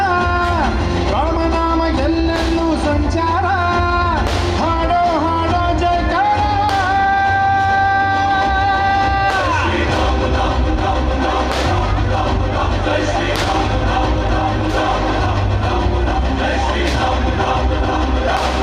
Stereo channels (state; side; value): identical; both; correlation 1.00